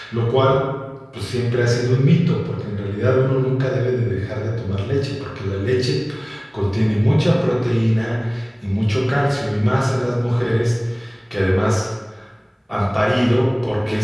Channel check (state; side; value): identical; both; correlation 1.00